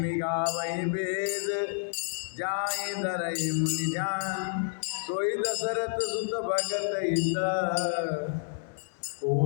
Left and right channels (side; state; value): right; silent; digital silence